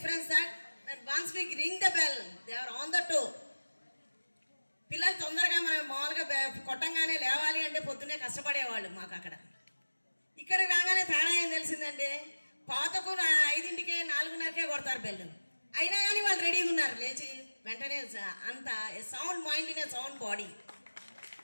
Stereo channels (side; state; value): both; inverted; correlation -1.00